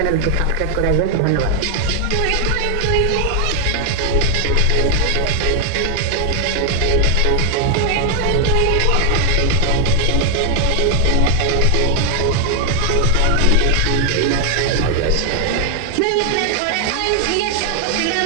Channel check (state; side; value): different; both; correlation 0.00